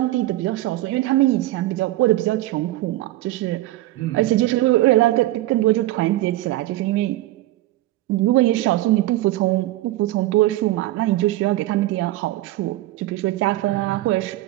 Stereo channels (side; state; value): left; quieter; 16.5 dB